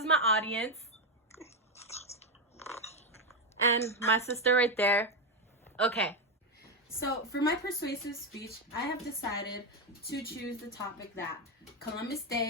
my audience. And my sister right there. Okay. So for my persuasive speech, I have decided to choose the topic that Columbus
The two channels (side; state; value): both; normal; correlation 0.07